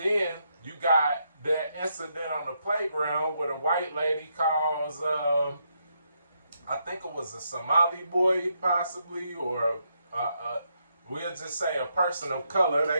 you got that incident on the playground where the white lady calls, I think it was a Somali boy possibly, or we'll just say a person of color. They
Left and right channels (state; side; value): inverted; both; correlation -0.78